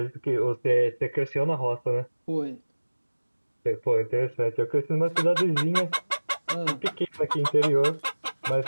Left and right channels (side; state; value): both; inverted; correlation -1.00